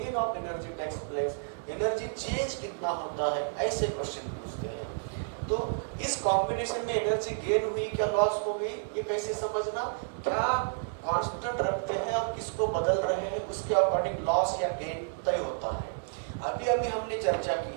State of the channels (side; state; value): left; silent; digital silence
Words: of energy takes place, energy change कितना होता है, ऐसे question पूछते हैं। तो इस combination में energy gain हुई क्या लॉस हो गई, ये कैसे समझना, क्या कांस्टेंट रखते हैं और किसको बदल रहे हैं उसके अकॉर्डिंग लॉस या गेन तय होता है। अभी अभी हमने चर्चा